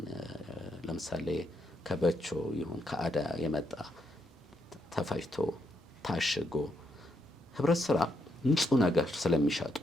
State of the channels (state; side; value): normal; both; correlation 0.78